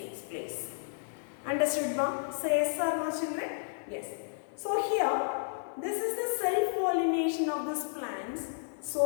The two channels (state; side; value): silent; right; digital silence